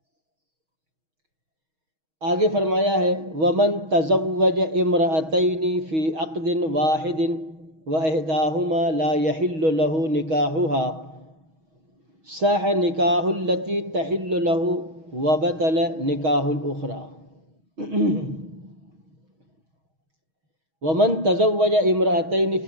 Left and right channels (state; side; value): late; left; 6.3 ms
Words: آگے فرمایا ہے وَمَن تَزَوَّجَ امْرَأَتَيْنِ فِي عَقْدٍ وَاحِدٍ وَإِحْدَاهُمَا لَا يَحِلُّ لَهُ نِكَاحُهَا صَحَّ نِكَاحُ الَّتِي تَحِلُّ لَهُ وَبَطَلَ نِكَاحُ الْأُخْرَى۔ وَمَن تَزَوَّجَ امْرَأَتَيْنِ